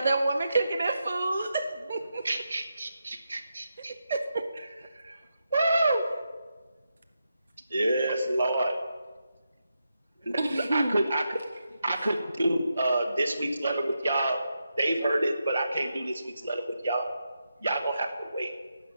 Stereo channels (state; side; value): inverted; both; correlation -0.86